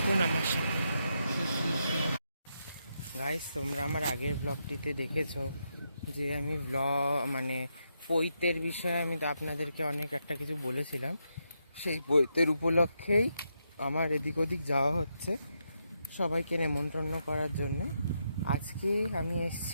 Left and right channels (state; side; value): inverted; both; correlation -0.82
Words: আমার সাথে। গাইস, তোমরা আমার আগের ব্লগটিতে দেখেছো যে আমি পৈতের বিষয়ে আমি তো আপনাদেরকে অনেক একটা কিছু বলেছিলাম। সেই পৈতের উপলক্ষেই আমার এদিক ওদিক যাওয়া হচ্ছে সবাইকে নেমন্তন্ন করার জন্যে। আজকে আমি